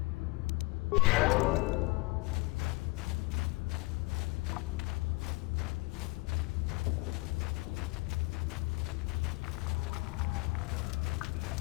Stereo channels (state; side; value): quieter; right; 24.8 dB